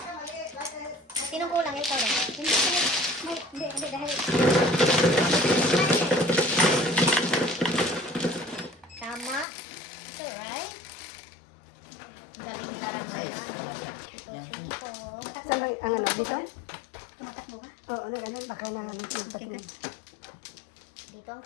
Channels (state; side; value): drops out; right; at 9.5 s